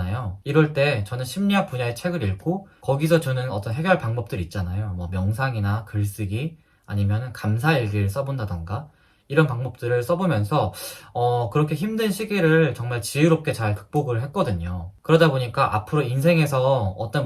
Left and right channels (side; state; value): both; identical; correlation 1.00